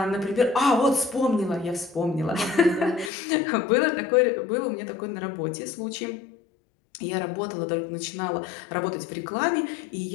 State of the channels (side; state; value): right; drops out; at 3.1 s